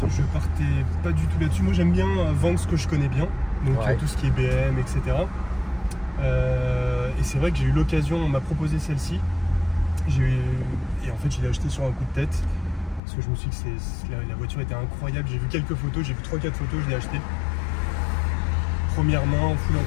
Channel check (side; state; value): right; drops out; at 13.0 s